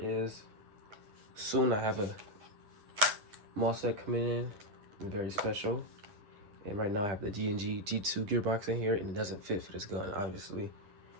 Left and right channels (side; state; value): left; late; 9.6 ms